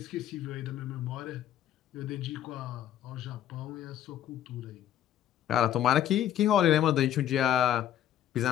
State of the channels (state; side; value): quieter; right; 11.2 dB